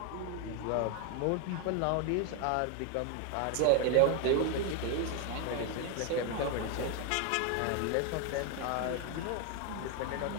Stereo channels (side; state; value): both; different; correlation 0.01